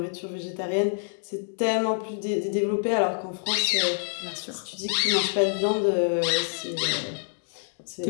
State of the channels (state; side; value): silent; right; 60 dB below the other